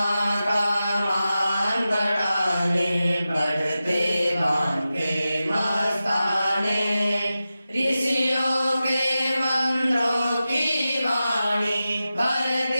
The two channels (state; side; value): inverted; both; correlation -0.93